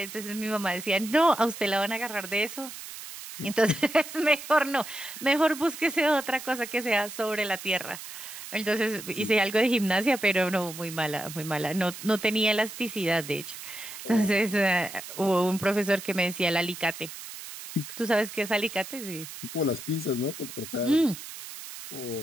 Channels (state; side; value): noise; right; hiss, 12 dB below the sound